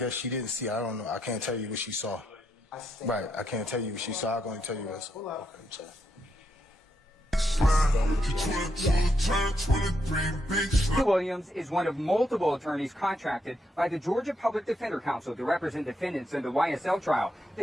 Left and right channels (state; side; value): normal; both; correlation 0.80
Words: she didn't see. I don't know. I can't tell you what she saw. Right. I can't tell you what she saw. I'm going to tell you what. Okay. Williams is one of multiple attorneys contracted by the Georgia Public Defender Council to represent defendants in the YSL trial.